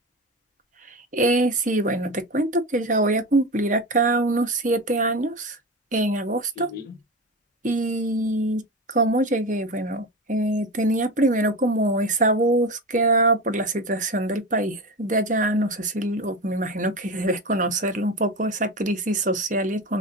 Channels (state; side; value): normal; both; correlation 0.24